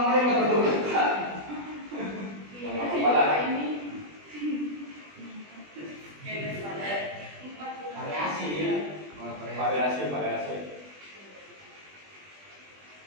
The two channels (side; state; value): left; late; 20 ms